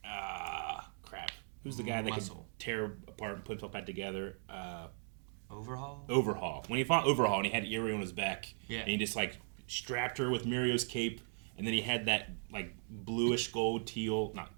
who's the guy that Muscle. could tear apart and put himself back together? Overhaul? Overhaul. When he fought Overhaul and he had Eerie on his back, Yeah. and he just like strapped her with Mirio's cape, and then he had that like bluish gold, teal, not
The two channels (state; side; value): silent; left; 52 dB below the other